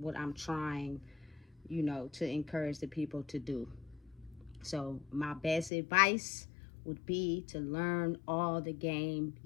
I'm trying to encourage the people to do. So my best advice would be to learn all the game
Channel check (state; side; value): drops out; right; at 5.7 s